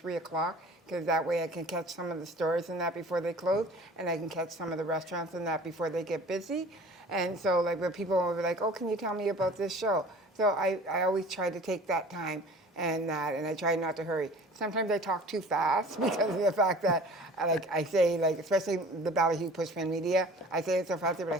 o'clock because that way I can catch some of the stores and that before they close, and I can catch some of the restaurants and that before they get busy. And so like when people will be like, oh, can you tell me about this show? So I always try to take that time and I try not to hurry. Sometimes I talk too fast because of the fact that, like I say, like especially the BALLYHOO Pushkin Media, I say it so fast they're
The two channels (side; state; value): both; normal; correlation 0.45